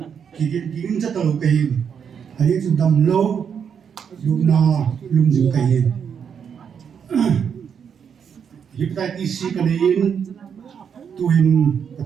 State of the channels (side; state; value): left; quieter; 7.4 dB